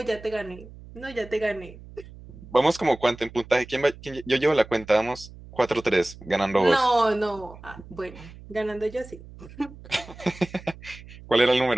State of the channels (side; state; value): right; noise; hum, 18 dB below the sound